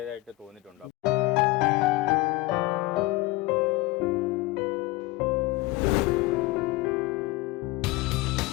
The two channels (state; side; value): quieter; right; 20.5 dB